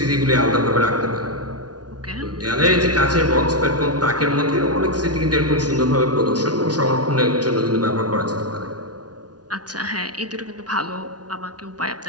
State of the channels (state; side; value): late; left; 0.69 ms